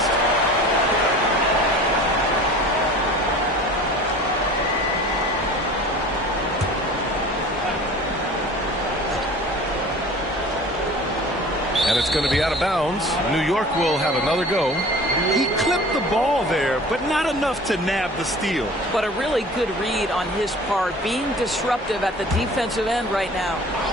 And it's going to be out of bounds. New York will have another go. He clipped the ball there, but not enough to nab the steal. But a really good read on his part, being disruptive at the defensive end right now.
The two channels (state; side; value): normal; both; correlation 0.43